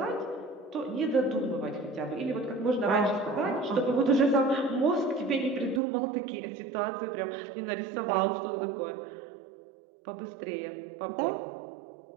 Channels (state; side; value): drops out; left; at 5.8 s